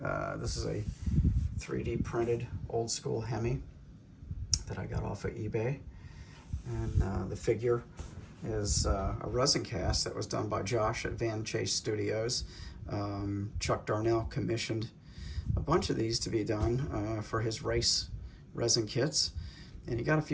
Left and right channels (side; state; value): both; identical; correlation 1.00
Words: This is a 3D printed old school Hemi that I got off of eBay, and the figure is a resin cast that was done by Josh at Van Chase Studios. Chuck Darnell commissioned a bunch of these to be done for his race resin kits, and he got a